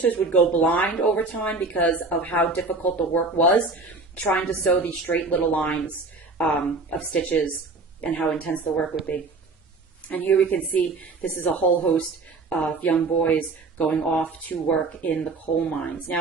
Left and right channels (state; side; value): quieter; left; 3.6 dB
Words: would go blind over time because of how difficult the work was, trying to sew these straight little lines of stitches and how intense the work would be. And here we can see this is a whole host of young boys going off to work in the coal mines.